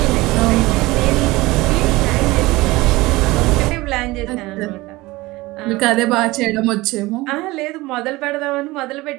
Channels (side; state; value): left; quieter; 20.5 dB